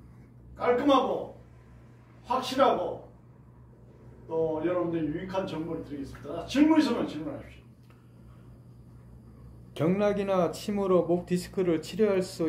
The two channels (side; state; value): both; identical; correlation 1.00